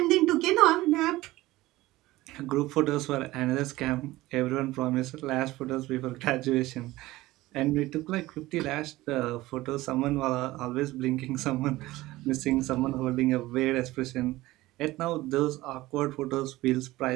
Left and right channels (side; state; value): left; quieter; 18.1 dB